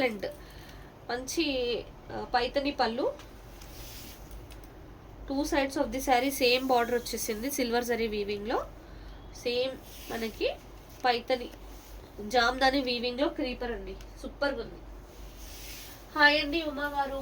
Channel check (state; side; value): identical; both; correlation 1.00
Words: మంచి పైతని పళ్ళు, 2 sides of the sari same border వచ్చేసింది సిల్వర్ జరీ వీవింగ్లో. సేమ్ మనకి పైతని జామ్దాని వీవింగ్ లో క్రీపర్ అండి, సూపర్ గా ఉంది. హాయ్ అండి ఉమా గారు,